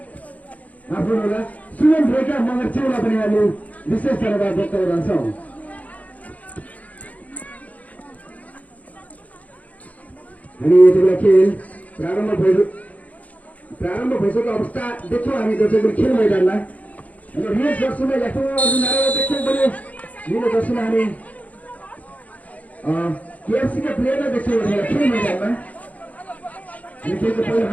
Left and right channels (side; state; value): right; late; 0.072 ms